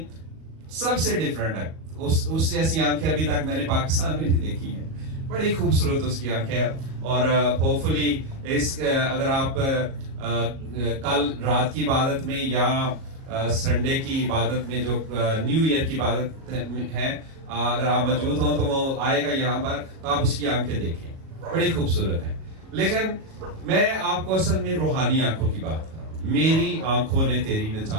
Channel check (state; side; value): late; left; 37 ms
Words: सबसे डिफरेंट है, उस जैसी आंखें अभी तक मैंने पाकिस्तान में नहीं देखी हैं। बड़ी खूबसूरत उसकी आंखें। और होपफुली अगर आप कल रात की इबादत में या संडे की इबादत में, जो न्यू ईयर की इबादत है, अगर आप मौजूद हो तो वो आएगा यहाँ पर, तो आप उसकी आंखें देखें, बड़ी खूबसूरत है। लेकिन मैं आपको असल में रूहानी आंखों की बात कर रहा हूँ। मेरी आंखों ने तेरी